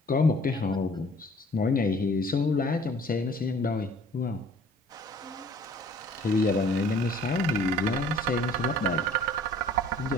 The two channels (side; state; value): both; normal; correlation 0.53